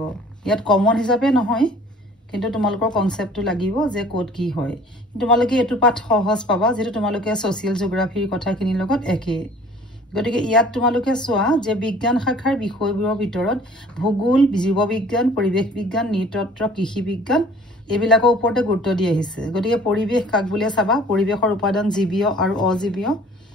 ইয়াত কমন হিচাপে নহয় কিন্তু তোমালোকৰ কনসেপ্টটো লাগিব যে কোড কি হয় তোমালোকে এটো পাঠ সহজ পাবা যেটো তোমালোকে সোশিয়াল জিওগ্ৰাফিৰ কথাখিনিৰ লগত একে গতিকে ইয়াত তোমালোকে চোৱা যে বিজ্ঞান শাখাৰ বিষয়বোৰৰ ভিতৰত ভূগোল জীৱবিজ্ঞান পৰিৱেশ বিজ্ঞান নৃতত্ত্ব কৃষি বিজ্ঞান এবিলাকৰ ওপৰতে গুৰুত্ব দি আহিছে গতিকে পৰিৱেশ কাক বুলিয়ে চাবা পৰিৱেশৰ উপাদান জীৱীয় আৰু অজীৱীয়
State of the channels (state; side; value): normal; both; correlation 0.50